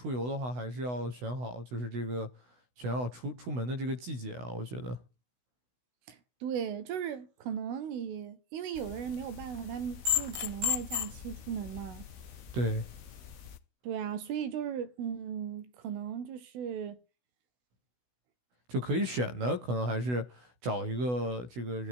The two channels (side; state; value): left; late; 16 ms